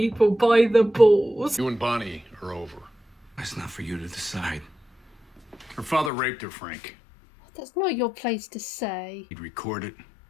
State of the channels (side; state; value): right; drops out; at 6.1 s